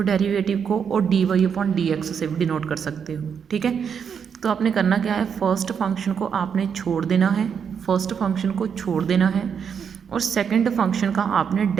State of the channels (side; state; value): left; quieter; 7.1 dB